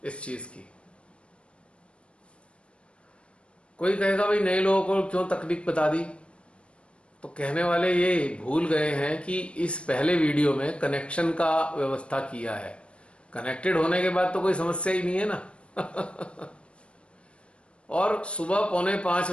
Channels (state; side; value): late; right; 0.059 ms